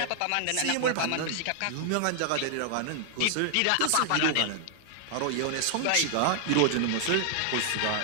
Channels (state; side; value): different; both; correlation 0.00